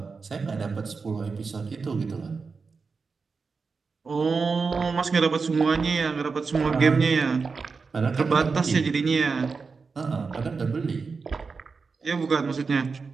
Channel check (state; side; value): quieter; left; 4.8 dB